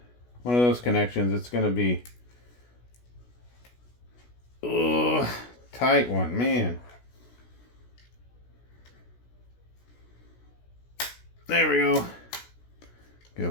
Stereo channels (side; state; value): right; late; 16 ms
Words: of those connections, it's gonna be tight one, man. There we go. Get a